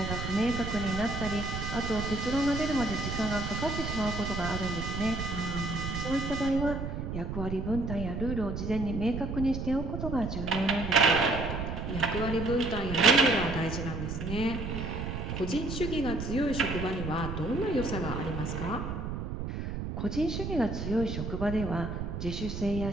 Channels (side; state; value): right; noise; rumble, 4 dB below the sound